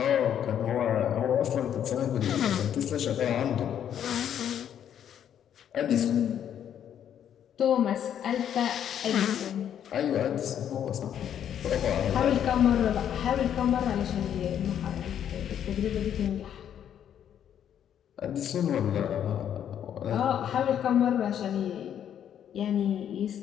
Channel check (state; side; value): quieter; right; 9.6 dB